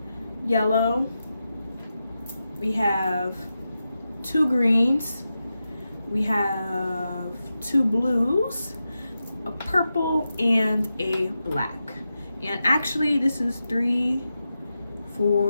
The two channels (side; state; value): both; inverted; correlation -0.90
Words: yellow. We have 2 greens. We have 2 blues, a purple, and a black. And actually this is 3,